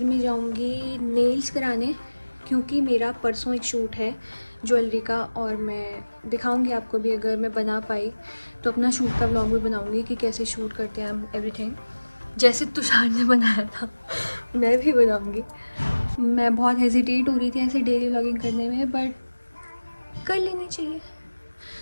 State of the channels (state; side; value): inverted; both; correlation -1.00